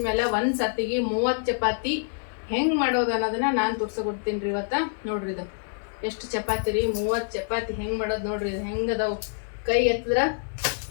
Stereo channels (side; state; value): right; silent; digital silence